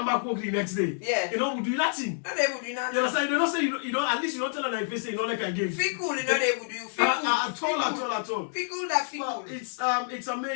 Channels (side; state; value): right; silent; digital silence